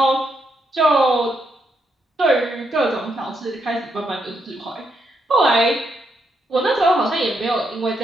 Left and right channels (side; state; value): both; normal; correlation 0.79